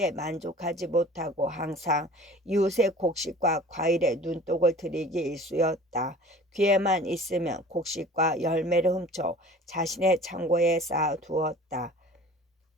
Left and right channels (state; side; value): normal; both; correlation 0.44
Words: 만족하지 못하고 항상 이웃의 곡식과 과일에 눈독을 들이기 일쑤였다. 기회만 있으면 곡식과 열매를 훔쳐 자신의 창고에 쌓아두었다.